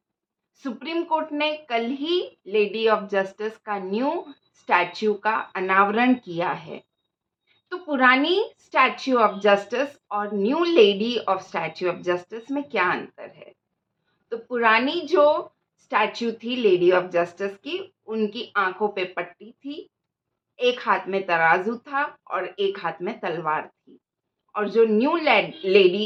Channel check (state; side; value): identical; both; correlation 1.00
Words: Supreme court ने कल ही lady of justice का new statue का अनावरण किया है। तो पुरानी स्टैच्यू ऑफ जस्टिस और new lady of statue of justice में क्या अंतर है? तो पुरानी जो स्टैच्यू थी लेडी ऑफ जस्टिस की, उनकी आंखों पे पट्टी थी, एक हाथ में तराजू था और एक हाथ में तलवार थी। और जो न्यू